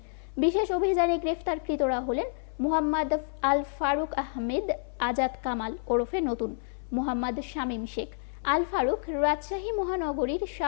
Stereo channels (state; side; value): silent; right; 59 dB below the other